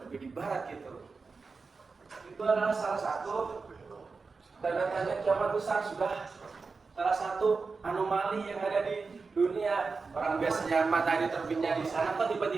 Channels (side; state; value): left; quieter; 4.4 dB